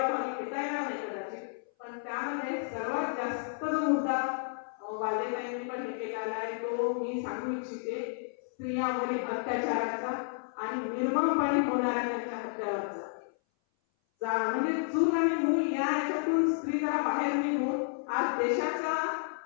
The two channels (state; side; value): silent; right; 57 dB below the other